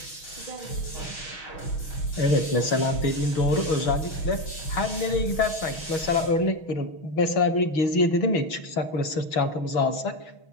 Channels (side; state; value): right; late; 6.3 ms